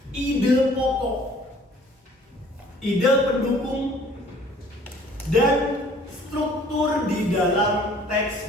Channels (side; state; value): both; normal; correlation 0.54